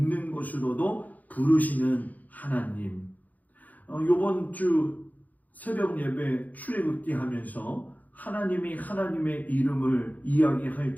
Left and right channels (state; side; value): late; right; 0.080 ms